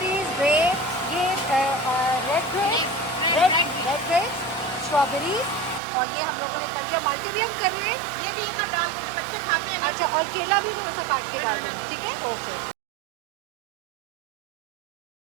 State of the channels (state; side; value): drops out; left; at 5.8 s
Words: ग्रेप, ये red grape, red grape, strawberries, और ये हम लोगों ने कर लिया। माल्टे भी हम कर रहे हैं, ये भी एक और डाल दो, बच्चों खाते हैं। अच्छा, और केला भी थोड़ा सा काट के डाल दें, ठीक है, ओके।